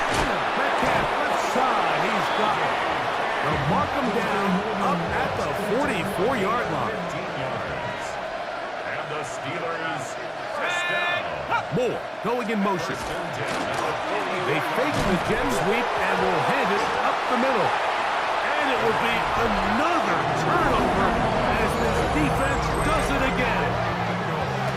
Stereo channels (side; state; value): both; identical; correlation 1.00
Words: Metcalf left side, he's got it. They'll mark him down up at the 44-yard line. And the Steelers first down. Moore going in motion. They fake the jet sweep and will hand it up the middle. And it will be another turnover as this defense does it again.